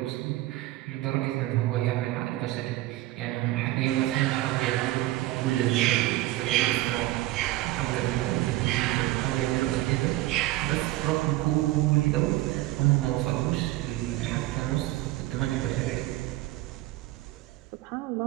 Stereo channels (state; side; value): quieter; left; 17.2 dB